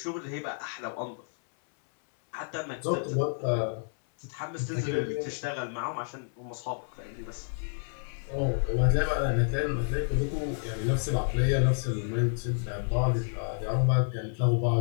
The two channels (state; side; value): silent; right; 58 dB below the other